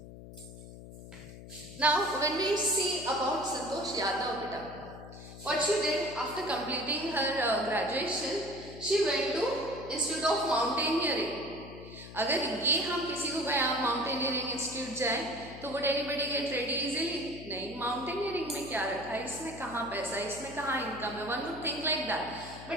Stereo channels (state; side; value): noise; left; hum, 14 dB below the sound